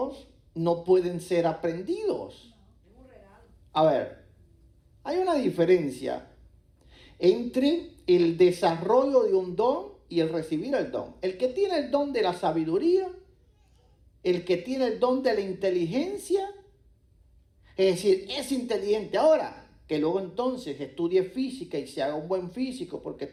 no pueden ser aprendidos. A ver, hay una diferencia entre el desarrollo de un don y el recibir el don. El que tiene el don de la sabiduría, el que tiene el don de la inteligencia, es decir, es inteligente ahora, que luego entonces estudie física y se haga un buen físico porque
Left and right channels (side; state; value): both; identical; correlation 1.00